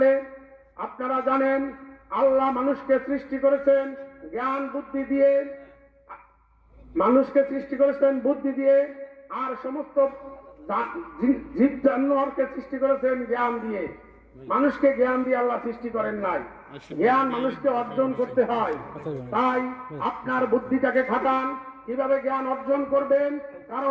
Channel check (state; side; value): identical; both; correlation 1.00